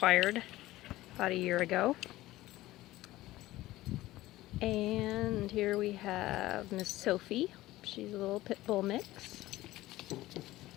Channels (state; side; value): quieter; right; 16.9 dB